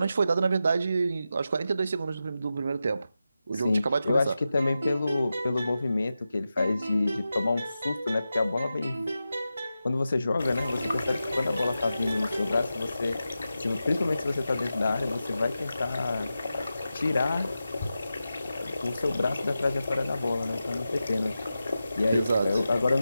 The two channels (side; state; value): both; inverted; correlation -0.91